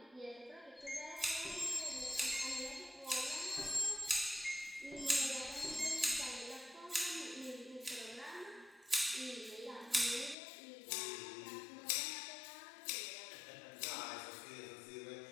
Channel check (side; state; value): right; drops out; at 10.4 s